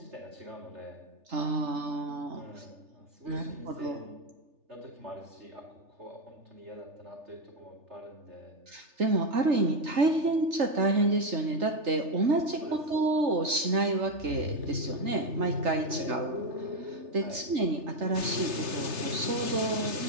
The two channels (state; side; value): late; left; 3.3 ms